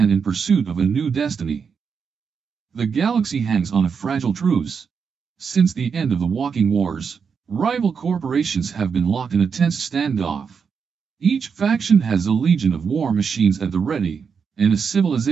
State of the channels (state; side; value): quieter; left; 6.2 dB